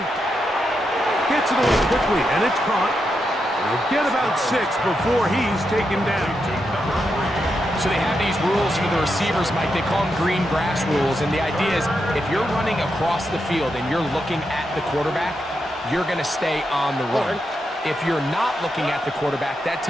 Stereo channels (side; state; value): both; normal; correlation 0.85